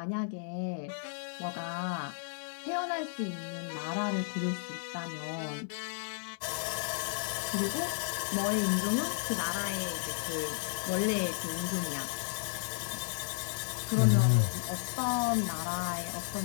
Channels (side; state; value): right; silent; digital silence